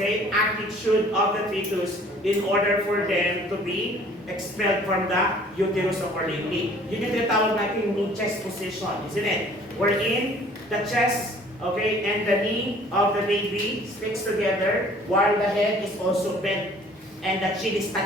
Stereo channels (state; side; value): normal; both; correlation 0.53